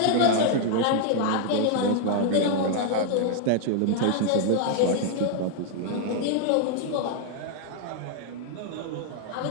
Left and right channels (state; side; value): different; both; correlation 0.00